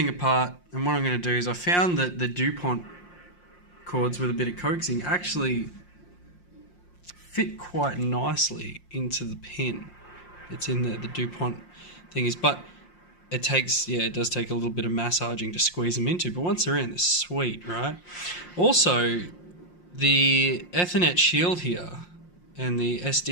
apart, and what I'm going to do is I found that the DuPont cords with a bit of coaxing actually fit quite nicely into the pin. It's in the DuPont thingies, but it does take a little bit of massaging to squeeze them into, but once they're in, they're sweet, right? Also, the Ethernet shield here and the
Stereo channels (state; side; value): late; right; 5.6 ms